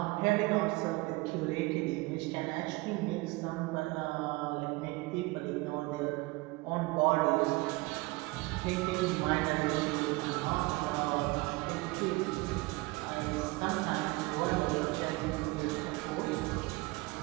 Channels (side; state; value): left; quieter; 23.2 dB